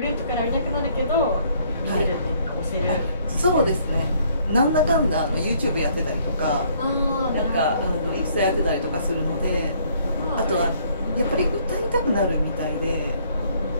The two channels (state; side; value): inverted; both; correlation -0.64